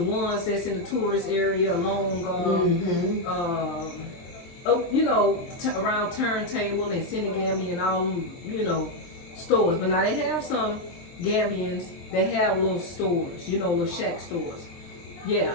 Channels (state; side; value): late; right; 23 ms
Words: ones that's in the tourist area along, around Turntable and Senegambia and all them, stores. But now they have some Gambians that have little stores, little shack stores. Yeah,